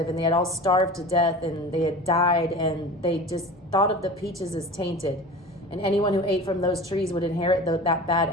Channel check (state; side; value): normal; both; correlation 0.35